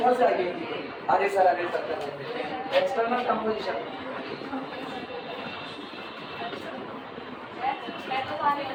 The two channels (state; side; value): identical; both; correlation 1.00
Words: से आगे, अरे सर एक्सटर्नल कंपोजिशन